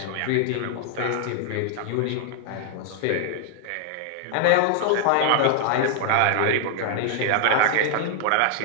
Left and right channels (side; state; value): both; different; correlation 0.00